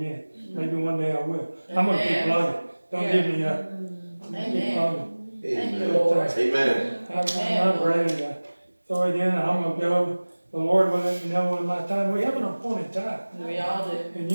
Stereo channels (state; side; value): inverted; both; correlation -1.00